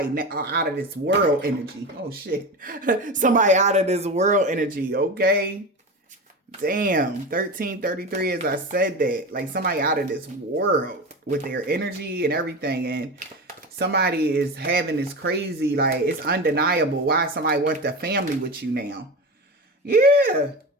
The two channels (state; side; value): normal; both; correlation 0.25